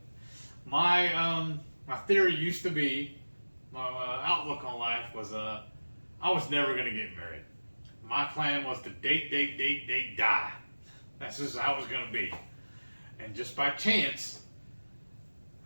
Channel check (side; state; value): both; inverted; correlation -1.00